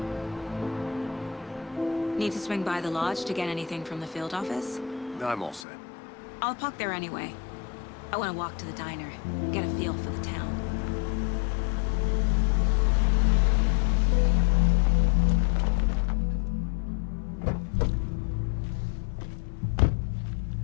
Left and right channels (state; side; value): drops out; right; at 5.7 s